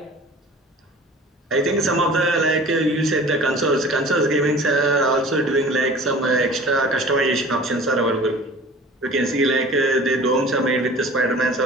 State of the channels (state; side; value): normal; both; correlation 0.43